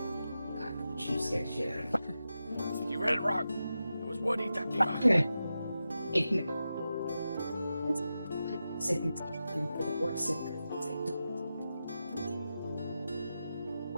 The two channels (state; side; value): inverted; both; correlation -0.91